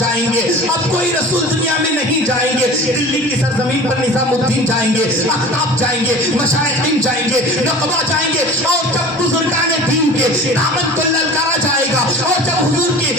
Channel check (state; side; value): normal; both; correlation 0.39